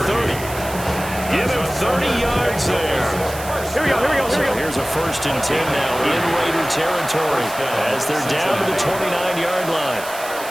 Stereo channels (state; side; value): noise; right; hiss, 13 dB below the sound